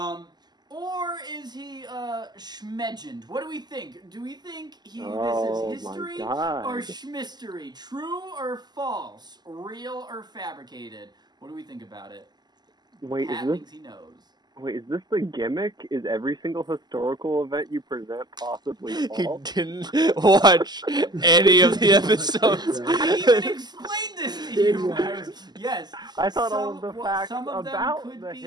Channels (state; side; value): late; left; 0.20 ms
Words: Or is he schmegend? What do we think? Do we think this is history or Shmistory? True or false? Real or fabricated? What do we think about it? Wait, Pat thinks he knows. Wait, is this the gimmick? Is every single historical event you present possibly He false? didn't watch any of the episodes. I even explained this to you. Yes. I thought all of the facts some of them about could the be...